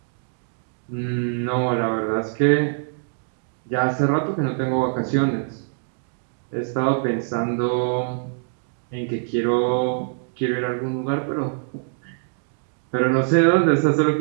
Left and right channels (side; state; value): left; silent; digital silence